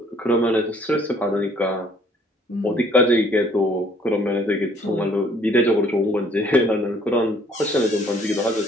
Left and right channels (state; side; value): normal; both; correlation 0.60